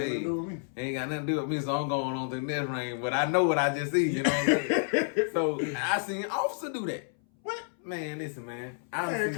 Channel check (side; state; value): right; silent; 58 dB below the other